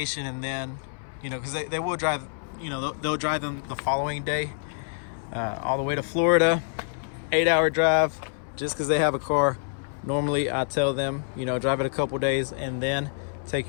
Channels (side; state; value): right; silent; 60 dB below the other